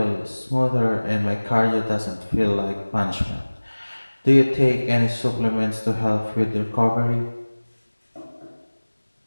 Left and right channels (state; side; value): inverted; both; correlation -1.00